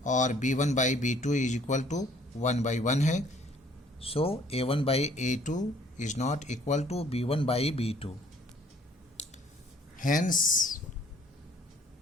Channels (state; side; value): normal; both; correlation 0.59